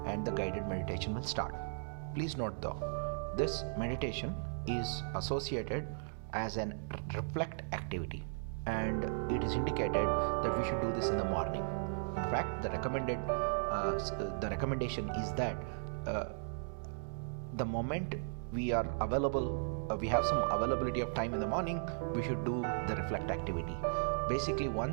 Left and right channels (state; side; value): silent; left; digital silence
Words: and the guided meditation will start. Please note though, this meditation is associated as an reflect activity, and it is indicated that we should do this in the morning. In fact, the recommendation is that the moment we are available, we have some availability of time in the morning, we should do the reflect activity. Basically,